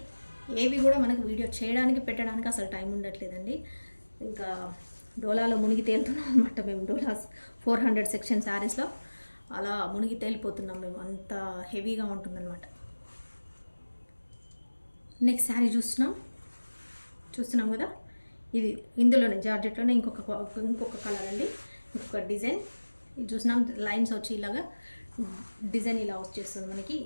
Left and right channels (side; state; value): both; inverted; correlation -1.00